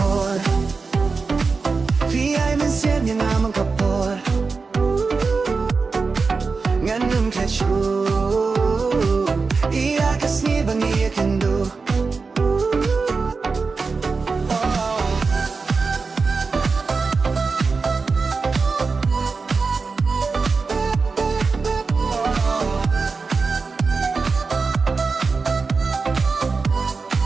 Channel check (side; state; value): left; quieter; 4.5 dB